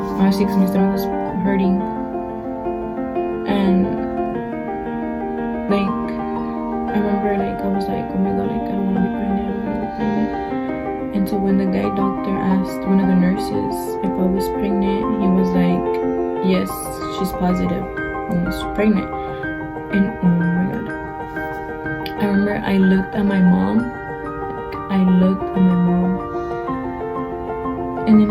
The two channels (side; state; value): both; identical; correlation 1.00